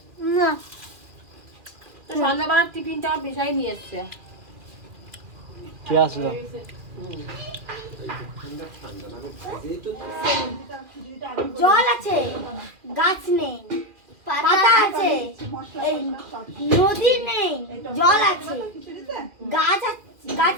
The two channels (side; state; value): left; late; 2.4 ms